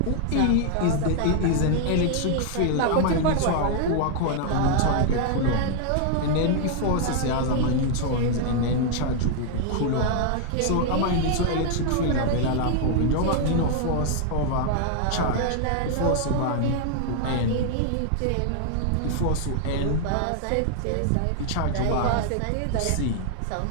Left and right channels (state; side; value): different; both; correlation 0.00